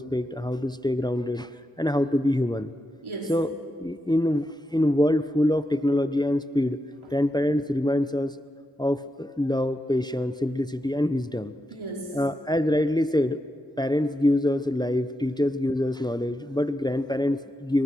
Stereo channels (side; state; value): both; normal; correlation 0.86